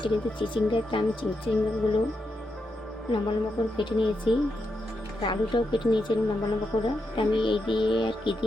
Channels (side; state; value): both; normal; correlation 0.84